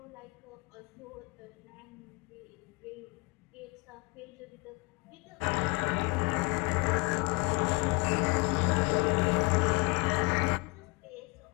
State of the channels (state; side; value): quieter; right; 27.7 dB